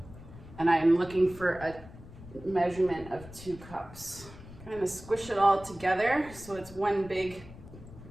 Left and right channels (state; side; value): noise; left; rumble, 17 dB below the sound